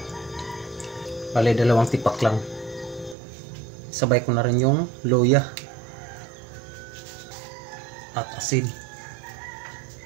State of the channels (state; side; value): drops out; left; at 3.2 s